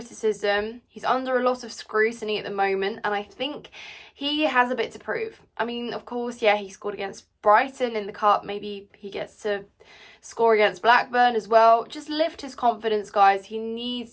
He's under a lot of scrutiny at the moment, and I think he has a bit to prove. I mean, of course, yeah, he scored against Brighton in the Cup. Maybe he gets to score against Blackburn as well. Just lift his confidence, guys. He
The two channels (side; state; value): both; identical; correlation 1.00